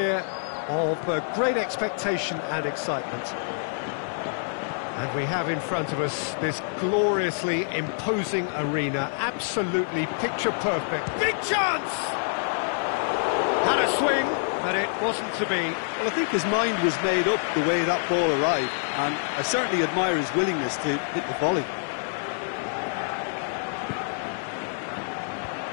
of great expectation and excitement. And we have in front of us this gloriously imposing arena, absolutely picture perfect. Big chance! Had a swing, but it wasn't to be. Well, I think his mind was made up the way that ball arrived, and I certainly admire his willingness to hit the volley.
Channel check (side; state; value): right; silent; digital silence